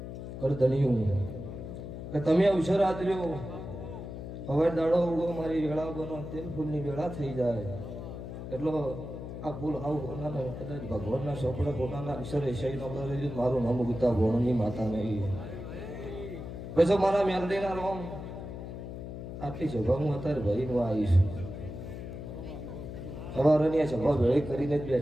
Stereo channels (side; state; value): left; noise; hum, 9 dB below the sound